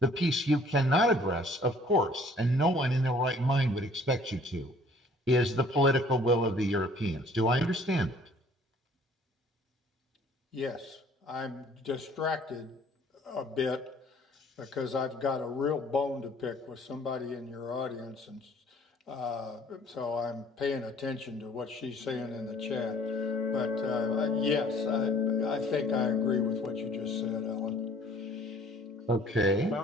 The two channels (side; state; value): both; normal; correlation 0.56